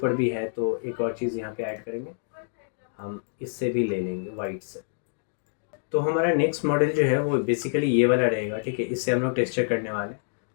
भी है तो एक और चीज़ यहाँ पे ऐड करेंगे, हम इससे भी ले लेंगे वाइट से। तो हमारा नेक्स्ट मॉडल जो है वो बेसिकली ये वाला रहेगा, ठीक है। इससे हम लोग टेक्सचर करने वाले हैं।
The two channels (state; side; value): silent; right; digital silence